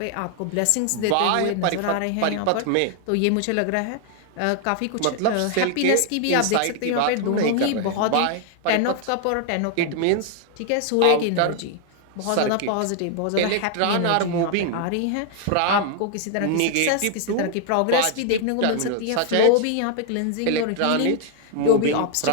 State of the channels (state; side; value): different; both; correlation 0.00